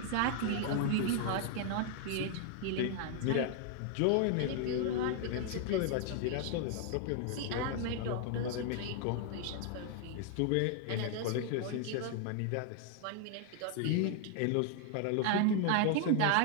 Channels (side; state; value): both; different; correlation 0.00